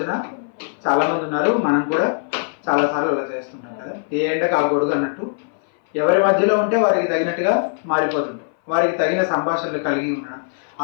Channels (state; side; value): silent; right; 59 dB below the other